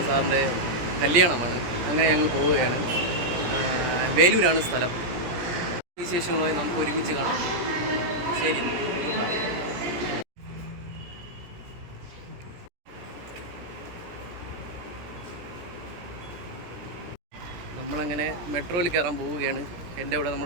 സാറിൻ്റെ കല്യാണമാണ്. അങ്ങനെ ഞങ്ങൾ പോവുകയാണ്. വേലൂരാണ് സ്ഥലം. വിശേഷങ്ങളുമായി നമുക്ക് ഒരുമിച്ച് കാണാം. ശരി, ഗുഡ് ബൈ. നമ്മളങ്ങനെ മെട്രോയിൽ കയറാൻ പോവുകയാണ്. എൻ്റെ കൂടെ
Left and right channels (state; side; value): late; left; 17 ms